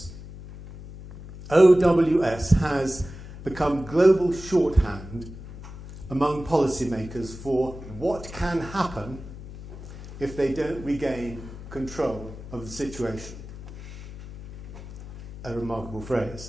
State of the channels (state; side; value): noise; left; hum, 13 dB below the sound